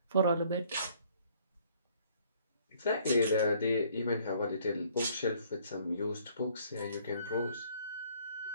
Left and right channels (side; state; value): both; inverted; correlation -0.61